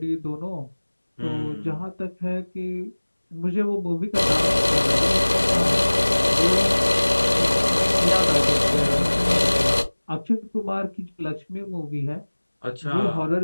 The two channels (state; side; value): inverted; both; correlation -1.00